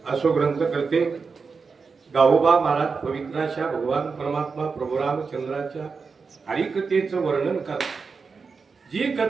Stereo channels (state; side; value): quieter; left; 5.0 dB